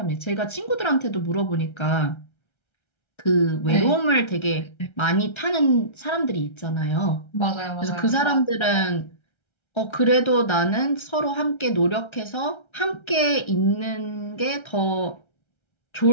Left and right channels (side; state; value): right; late; 1.3 ms